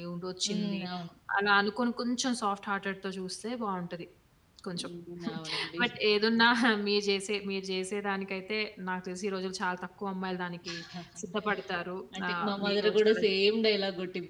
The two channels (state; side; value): identical; both; correlation 1.00